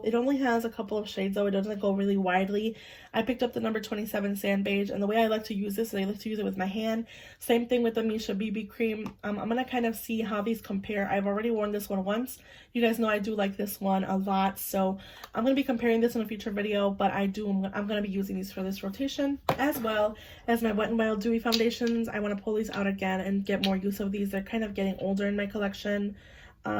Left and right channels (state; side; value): identical; both; correlation 1.00